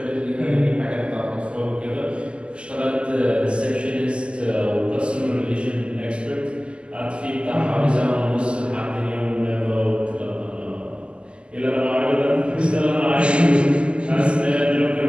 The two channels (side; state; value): left; late; 0.052 ms